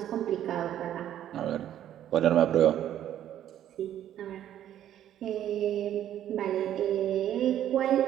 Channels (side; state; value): left; quieter; 11.3 dB